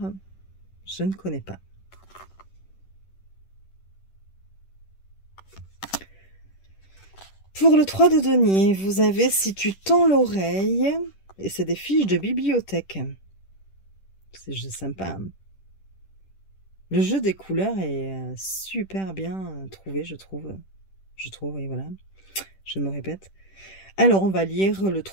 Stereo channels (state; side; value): late; right; 10 ms